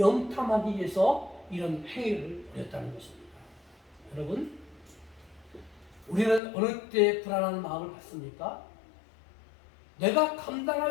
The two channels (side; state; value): right; drops out; at 6.4 s